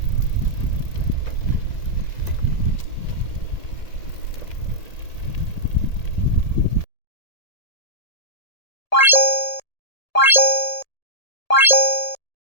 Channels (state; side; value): late; right; 1.8 ms